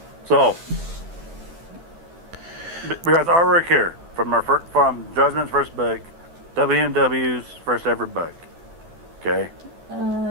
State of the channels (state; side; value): late; left; 12 ms